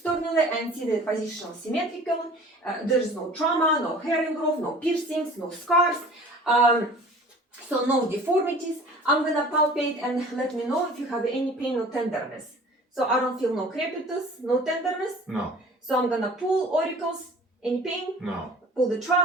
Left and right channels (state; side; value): normal; both; correlation 0.46